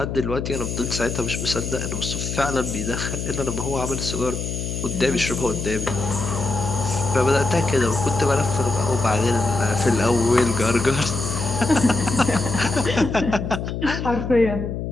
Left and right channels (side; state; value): left; noise; hum, 4 dB below the sound